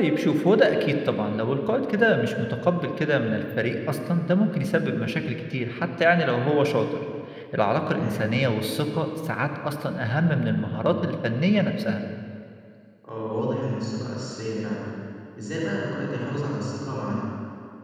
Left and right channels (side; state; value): both; identical; correlation 1.00